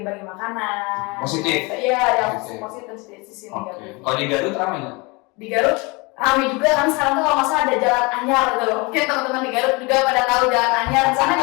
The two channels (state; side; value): quieter; right; 27.1 dB